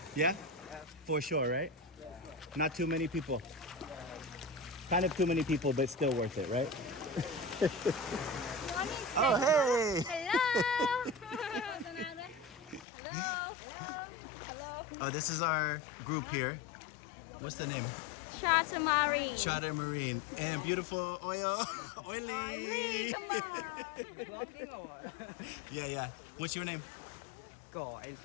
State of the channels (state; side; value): drops out; right; at 12.9 s